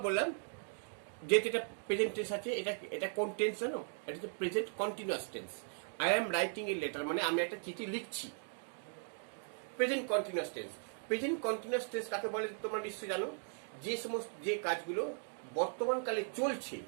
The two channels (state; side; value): silent; left; 52 dB below the other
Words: বললাম যেহেতু এটা প্রেজেন্ট টেন্স আছে, এটা কোন টেন্স জানো, এটা হচ্ছে present continuous tense. I am writing a letter মানে আমি একটা চিঠি লিখছি, present continuous tense. Present continuous tense কাকে বলে তোমরা নিশ্চয়ই জানো, যে কাজগুলো বর্তমান কালে চলছে